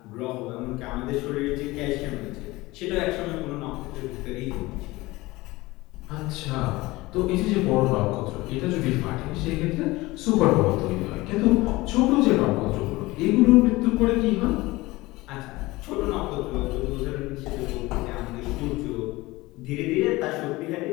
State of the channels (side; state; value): right; quieter; 20.4 dB